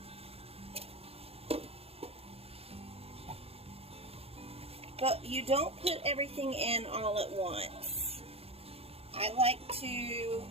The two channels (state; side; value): late; left; 0.29 ms